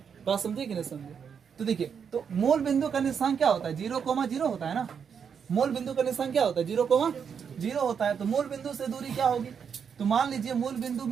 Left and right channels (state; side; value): quieter; left; 7.0 dB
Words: बात समझे कि नहीं समझे। तो देखिए, तो मूल बिंदु का निर्देशांक क्या होता है? 0,0 होता है ना। मूल बिंदु का निर्देशांक क्या होता है? 0,0 होता है। तो मूल बिंदु से दूरी क्या होगी? तो मान लीजिए मूल बिंदु